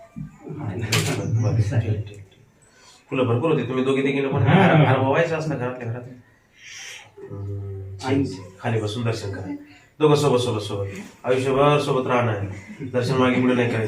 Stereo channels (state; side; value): identical; both; correlation 1.00